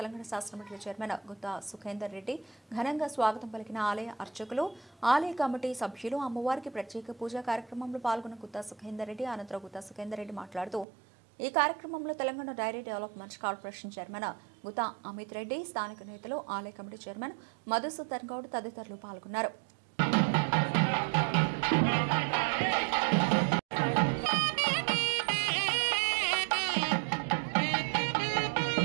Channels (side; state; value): left; drops out; at 10.9 s